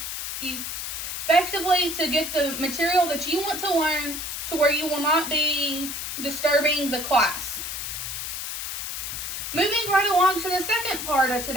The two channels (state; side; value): noise; left; hiss, 5 dB below the sound